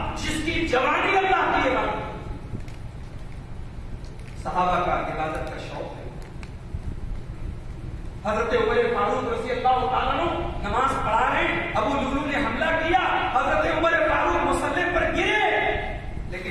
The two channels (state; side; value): identical; both; correlation 1.00